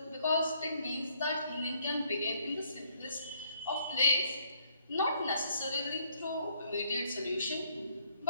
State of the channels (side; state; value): both; inverted; correlation -0.67